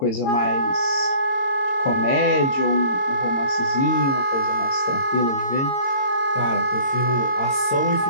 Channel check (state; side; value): late; right; 22 ms